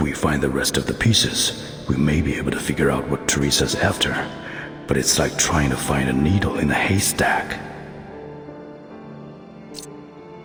we find the rest of the pieces, we may be able to figure out what Teresa's after. But it's like trying to find a needle in a haystack.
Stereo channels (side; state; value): both; identical; correlation 1.00